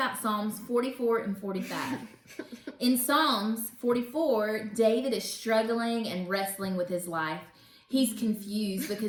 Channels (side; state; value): both; identical; correlation 1.00